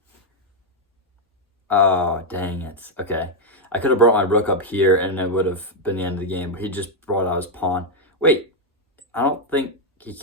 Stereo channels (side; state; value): both; normal; correlation 0.00